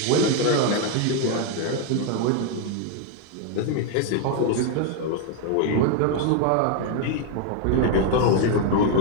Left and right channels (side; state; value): both; different; correlation 0.01